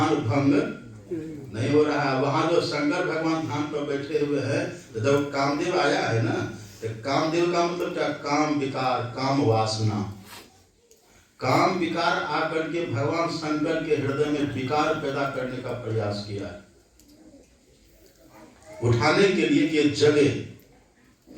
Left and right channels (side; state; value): both; identical; correlation 1.00